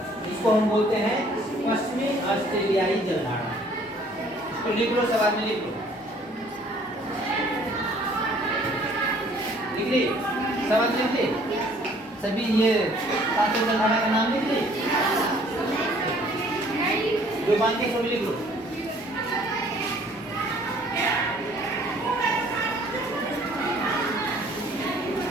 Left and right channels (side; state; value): both; normal; correlation 0.57